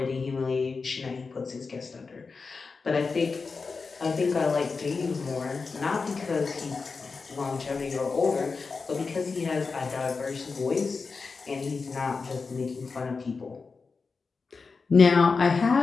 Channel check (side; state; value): right; quieter; 4.6 dB